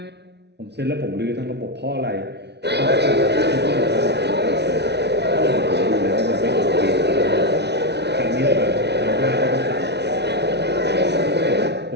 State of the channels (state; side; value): late; left; 0.50 ms